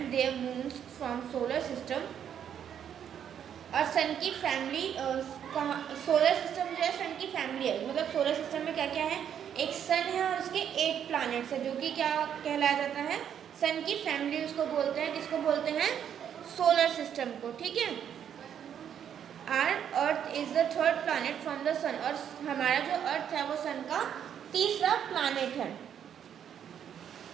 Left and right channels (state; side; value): quieter; left; 9.0 dB